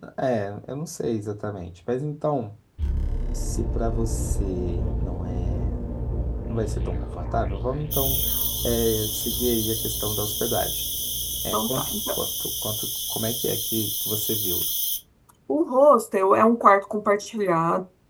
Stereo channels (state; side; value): identical; both; correlation 1.00